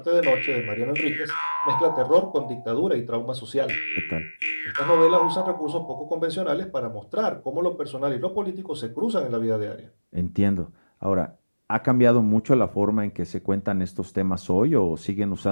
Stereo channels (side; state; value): both; inverted; correlation -1.00